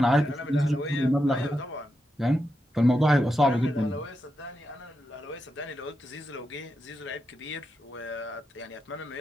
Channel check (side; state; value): both; normal; correlation 0.86